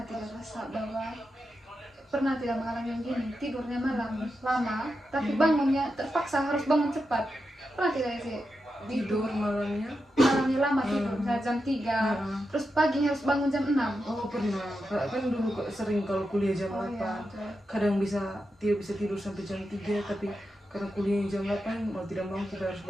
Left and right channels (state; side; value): normal; both; correlation 0.88